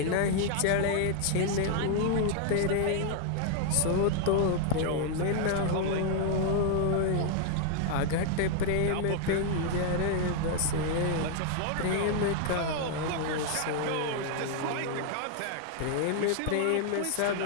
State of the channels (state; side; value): different; both; correlation 0.00